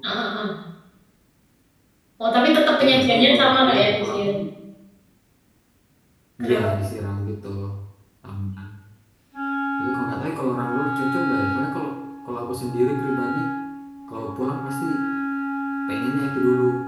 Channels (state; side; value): identical; both; correlation 1.00